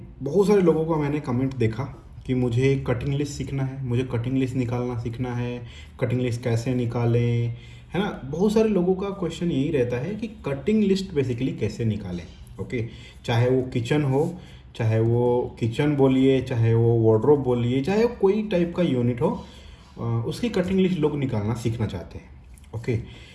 बहुत सारे लोगों का मैंने कमेंट देखा कि मुझे कटिंग लिस्ट सीखना है, मुझे कटिंग लिस्ट निकालना सीखना है, कटिंग लिस्ट कैसे निकालें, है ना। बहुत सारे लोगों का क्वेश्चन यही रहता है कि कटिंग लिस्ट बेसिकली कैसे निकालें। ओके, चाहे वो किचन हो, चाहे वो किचन बोलिए, चाहे वो वार्डरोब बोलिए, चाहे वो कोई टाइप का यूनिट हो, उसकी कटिंग लिस्ट लोग निकालना सीखना चाहते हैं। ओके,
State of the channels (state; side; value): identical; both; correlation 1.00